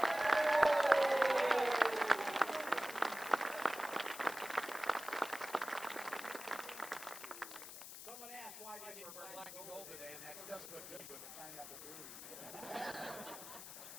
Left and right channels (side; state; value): left; noise; hiss, 12 dB below the sound